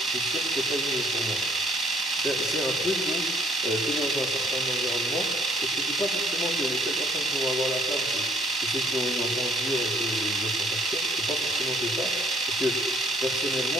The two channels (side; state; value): both; normal; correlation 0.62